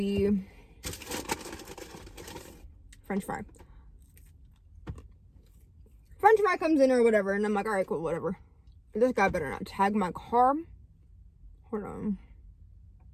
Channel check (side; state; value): both; identical; correlation 1.00